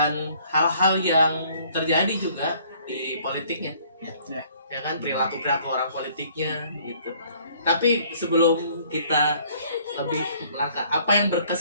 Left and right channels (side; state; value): both; inverted; correlation -0.59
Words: hal-hal yang terjadi juga di politiknya. Ya kan, perilaku orang politiknya gitu. Tapi sebelum kita lebih melangkah, apa yang